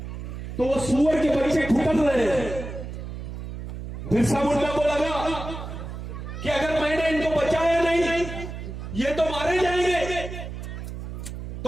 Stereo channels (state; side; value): noise; right; hum, 8 dB below the sound